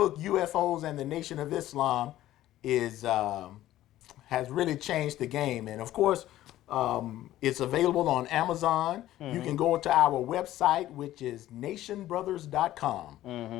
UFOs and the Nation of Islam, is has really changed the game. And of course, it's available on Amazon. You can go to our website, which is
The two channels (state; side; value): quieter; right; 14.2 dB